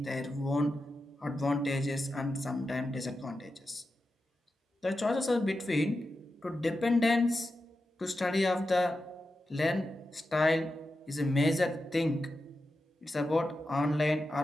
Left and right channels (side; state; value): both; normal; correlation 0.90